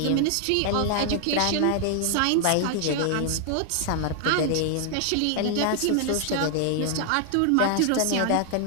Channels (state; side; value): different; both; correlation 0.00